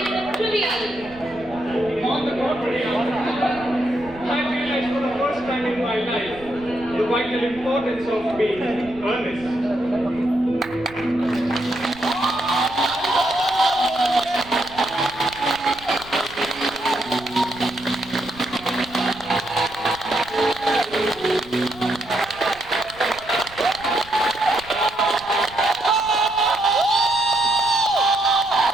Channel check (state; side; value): noise; right; rumble, 20 dB below the sound